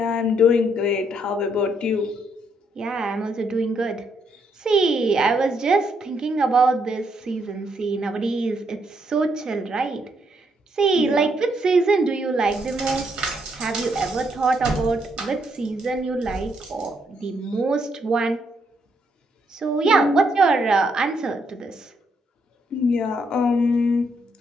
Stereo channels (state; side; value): normal; both; correlation 0.74